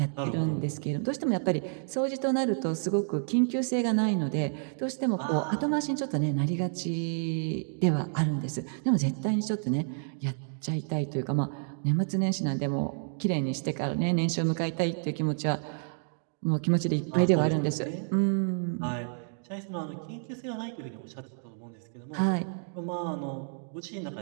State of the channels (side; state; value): left; silent; digital silence